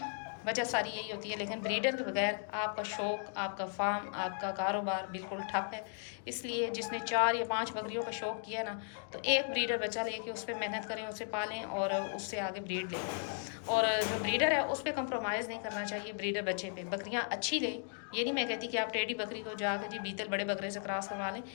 वजह सारी यही होती है, लेकिन ब्रीडर के बगैर आपका शौक़, आपका फार्म, आपका कारोबार बिल्कुल ठप है। इसलिए जिसने 4 या 5 बकरियों का शौक़ किया ना तो एक ब्रीडर बच्चा लेके उस पर मेहनत करें, उसे पालें और उससे आगे ब्रीड लें। और जो ब्रीडर है उस पर कंप्रोमाइज़ नहीं करना चाहिए, ब्रीडर बच्चे पे बकरियां अच्छी लें। ये नहीं मैं कहती कि आप टेढ़ी बकरी को जाकर जी बीतल बड़े बकरे से क्रॉस करवा लें,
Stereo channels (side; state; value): right; silent; digital silence